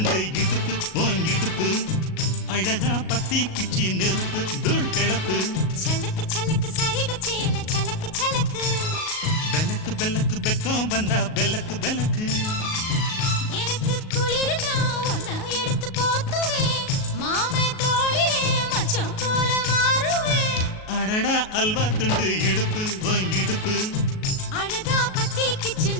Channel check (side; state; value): right; late; 38 ms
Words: இடுப்பு ஓன் இடுப்பு அழகா பத்தி கிச்சி நெருப்பு தூள் கிளப்பு சலக்கு சலக்கு சரிக சேல சலக்கு சலக்கு பெலக்கு பெலக்கு பெக்கம் வந்தா பெலக்கு பெலக்கு எனக்கு குளிர்னா ஒன்ன எடுத்து போத்துவே மாமே தோளிலே மச்சம் போல மாறுவே அடடா அல்வா துண்டு இடுப்பு ஓன் இடுப்பு